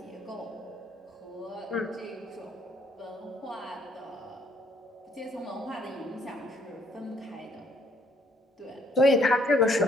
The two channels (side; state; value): both; normal; correlation 0.67